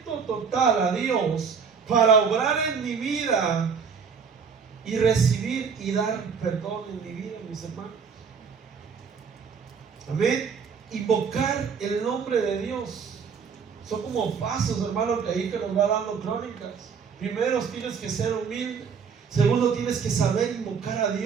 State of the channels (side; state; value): left; quieter; 6.2 dB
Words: total a Dios para obrar en mi vida y recibir y dar perdón en mi vida, mis hermanos. Amén. Invocar el nombre de Dios son como pasos, hermano, que ahí que nos va dando Crónicas. Primero tienes que ser humilde. Segundo, tienes que saber invocar a